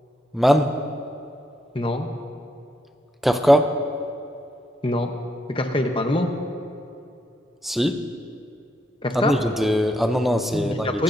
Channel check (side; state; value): both; normal; correlation 0.77